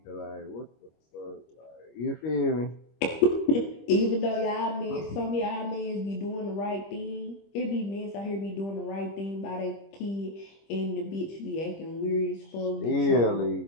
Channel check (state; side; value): late; right; 25 ms